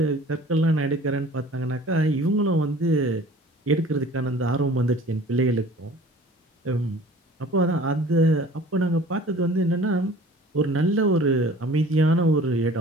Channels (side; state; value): both; normal; correlation 0.47